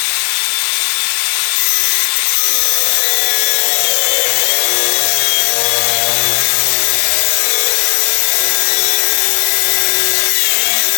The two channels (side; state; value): right; silent; digital silence